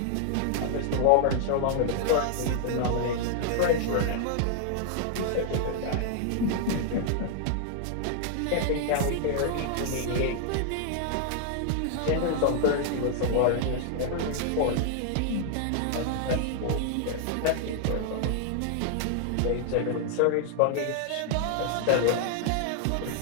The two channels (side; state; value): both; different; correlation 0.00